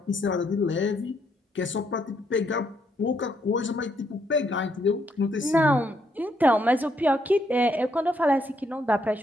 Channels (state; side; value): normal; both; correlation 0.74